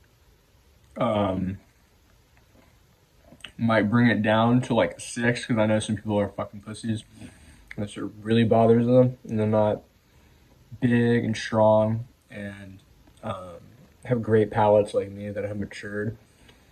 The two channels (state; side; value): identical; both; correlation 1.00